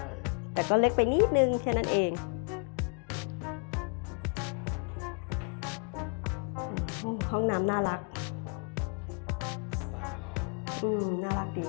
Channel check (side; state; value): right; quieter; 39.6 dB